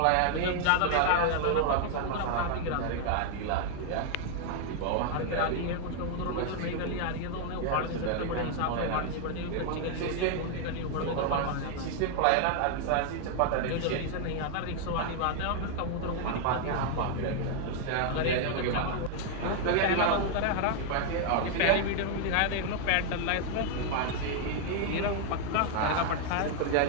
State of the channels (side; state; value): both; different; correlation 0.00